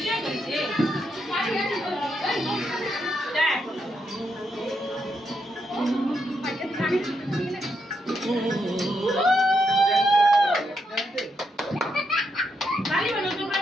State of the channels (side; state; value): both; normal; correlation 0.80